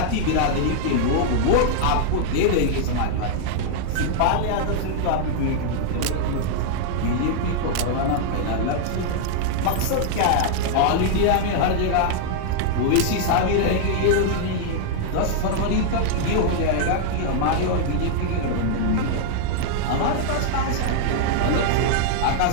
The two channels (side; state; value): both; different; correlation -0.01